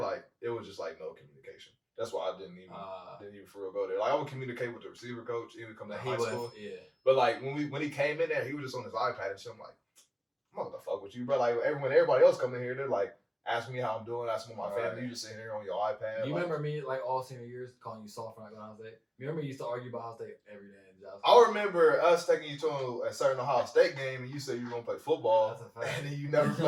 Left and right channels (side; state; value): both; identical; correlation 1.00